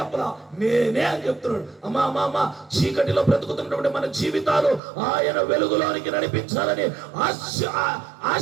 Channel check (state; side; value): drops out; left; at 4.8 s